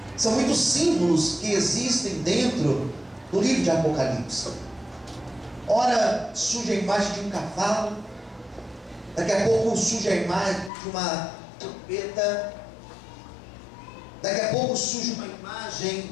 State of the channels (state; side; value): drops out; right; at 10.7 s